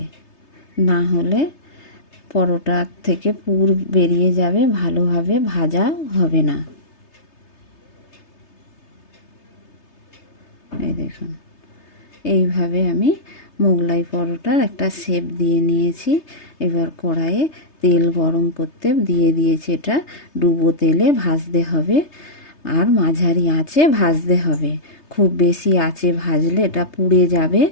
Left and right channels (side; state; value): right; late; 3.3 ms